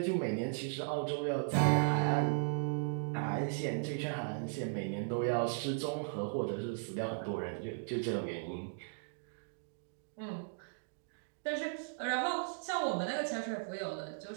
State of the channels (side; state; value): left; silent; digital silence